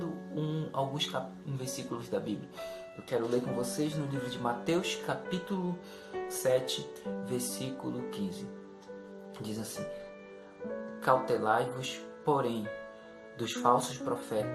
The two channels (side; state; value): both; identical; correlation 1.00